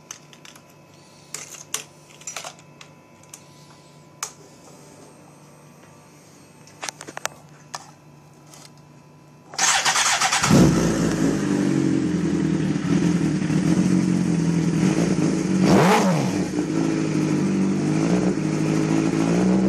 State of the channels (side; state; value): both; identical; correlation 1.00